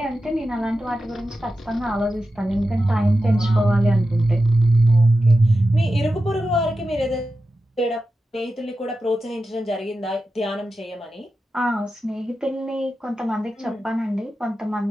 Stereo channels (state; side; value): normal; both; correlation 0.92